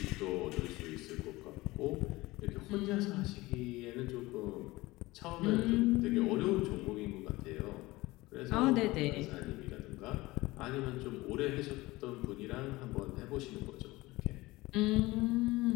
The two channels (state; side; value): quieter; right; 20.2 dB